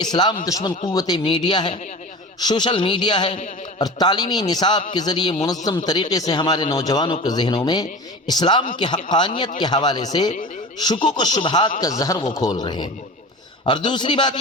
دشمن قوت میڈیا ہے، سوشل میڈیا ہے، اور تعلیمی نصاب کے ذریعے منظم طریقے سے ہمارے نوجوانوں کے ذہنوں میں اسلام کی حقانیت کے حوالے سے شکوک و شبہات کا زہر وہ کھول رہے ہیں۔ اور دوسری بات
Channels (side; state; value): both; normal; correlation 0.33